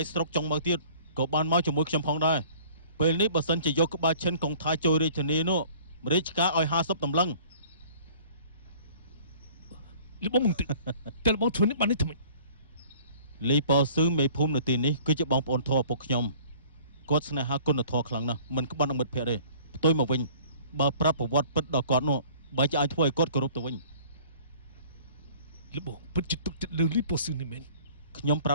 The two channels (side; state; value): both; inverted; correlation -0.51